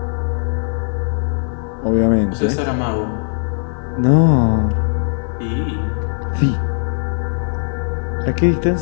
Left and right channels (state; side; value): silent; right; 67 dB below the other